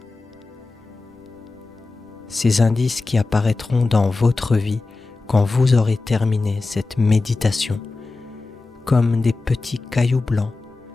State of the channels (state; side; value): quieter; right; 3.6 dB